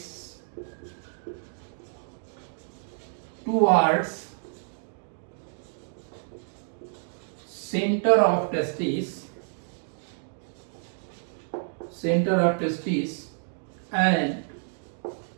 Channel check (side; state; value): left; silent; 59 dB below the other